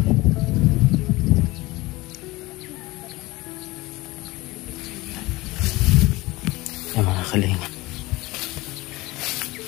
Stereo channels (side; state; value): right; quieter; 20.4 dB